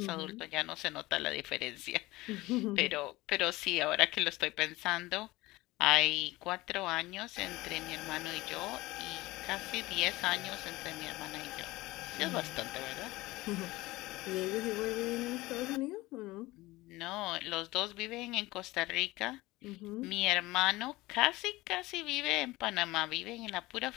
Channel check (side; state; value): right; quieter; 19.7 dB